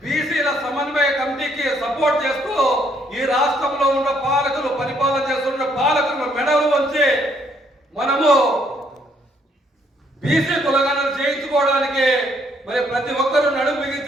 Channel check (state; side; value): normal; both; correlation 0.69